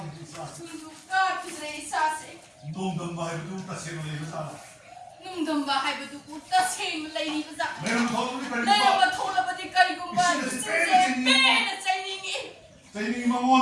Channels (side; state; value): both; identical; correlation 1.00